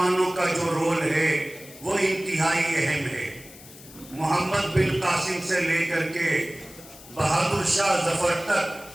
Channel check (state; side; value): noise; left; hiss, 19 dB below the sound